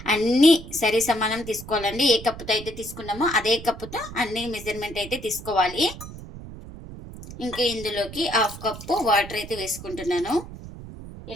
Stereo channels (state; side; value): noise; right; rumble, 13 dB below the sound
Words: అన్నీ సరి సమానం తీసుకోవాలండి. ఏ కప్పుతో అయితే తీసుకున్నామో అదే కప్పుతో అన్ని మెజర్మెంట్ అయితే తీసుకోవాలి. ఇంకా ఇందులోకి 1/2 కప్పు వాటర్ అయితే వేసుకుంటున్నాను.